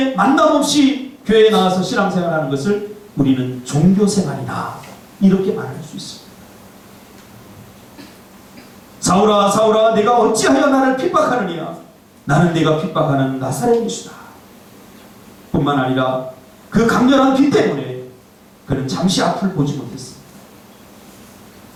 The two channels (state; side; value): identical; both; correlation 1.00